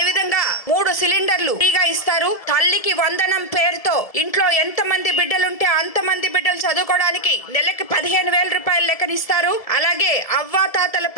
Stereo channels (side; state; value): right; late; 1.7 ms